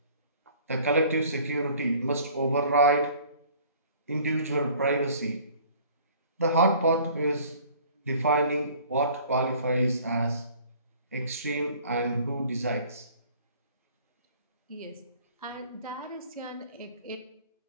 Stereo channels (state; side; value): inverted; both; correlation -0.52